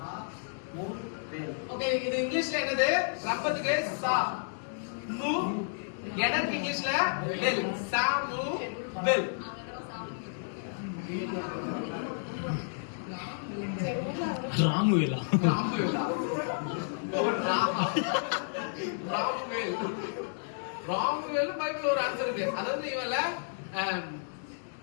ஓகே, இது இங்கிலீஷ்ல என்னது? ரப்பத்துக்கு சா மு, எனக்கு இங்கிலீஷ்ல வெல். சாமு வெல். ராமுவேலா. ராமுவேலா. ராமுவேல். ராமுவேல் பைபிள்ல ஒரு ஆன்சர் இருக்கு. அதாவது இவல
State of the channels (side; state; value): right; silent; digital silence